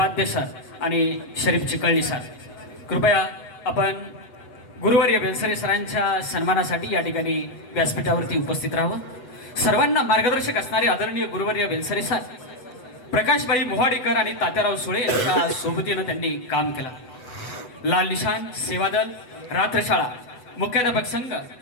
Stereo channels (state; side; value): late; right; 8.1 ms